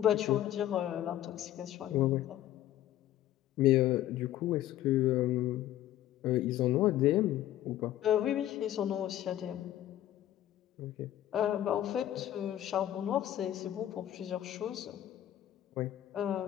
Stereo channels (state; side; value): quieter; right; 12.9 dB